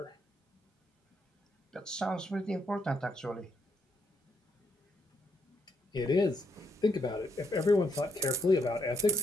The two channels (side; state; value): both; normal; correlation 0.75